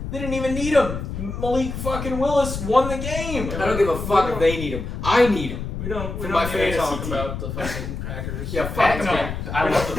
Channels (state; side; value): noise; left; rumble, 6 dB below the sound